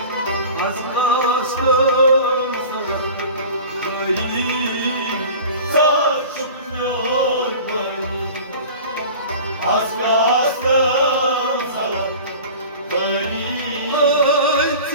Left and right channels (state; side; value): inverted; both; correlation -0.39